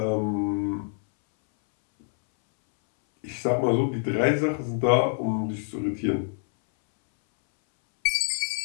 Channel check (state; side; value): silent; right; 61 dB below the other